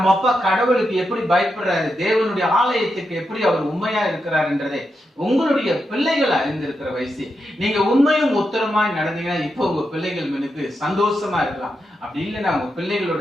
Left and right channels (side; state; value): both; normal; correlation 0.86